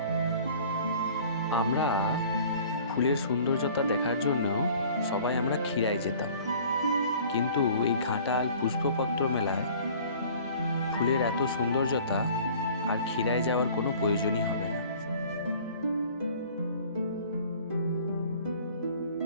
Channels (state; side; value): inverted; both; correlation -0.49